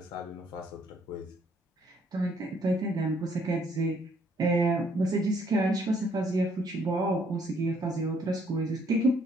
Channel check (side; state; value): both; normal; correlation 0.67